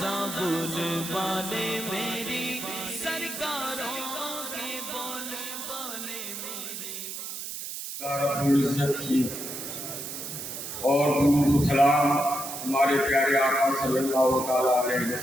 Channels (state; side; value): noise; right; hiss, 7 dB below the sound